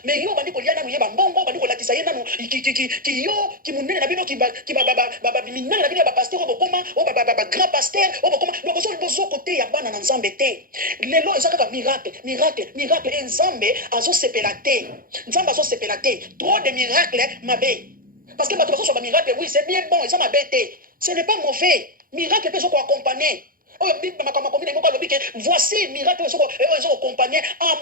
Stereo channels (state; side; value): late; left; 0.41 ms